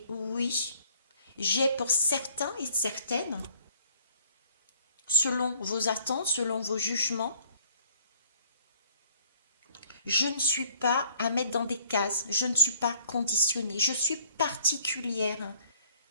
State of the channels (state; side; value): inverted; both; correlation -0.60